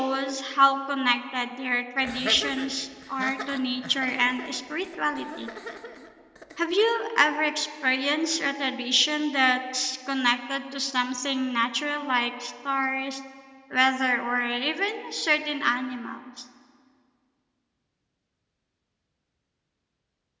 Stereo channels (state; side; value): identical; both; correlation 1.00